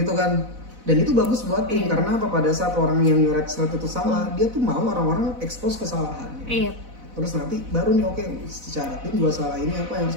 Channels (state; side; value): late; left; 4.0 ms